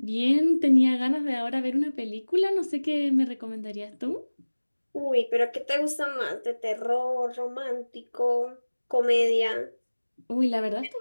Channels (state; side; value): inverted; both; correlation -1.00